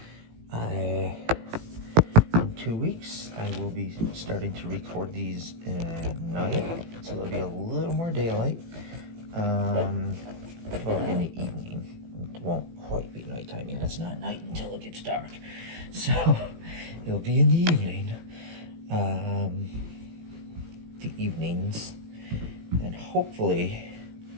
in 2 weeks I will be starting to record these at night, so there'll be a little more daylight. Well, in the evening. It won't quite be nighttime yet. It's not night until it gets dark. So it'll be in the evening. The evenings. And hopefully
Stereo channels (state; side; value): late; left; 18 ms